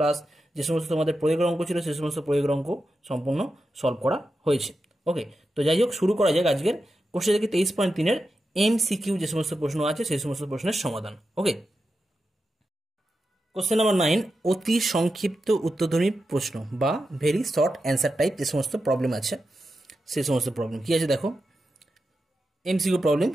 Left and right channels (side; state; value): both; normal; correlation 0.89